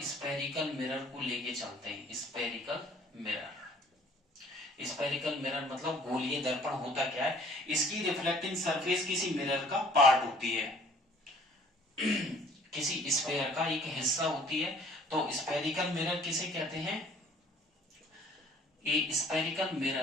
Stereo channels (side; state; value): both; normal; correlation 0.55